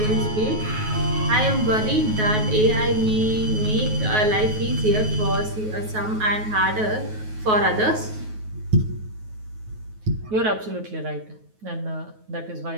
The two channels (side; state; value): left; late; 9.4 ms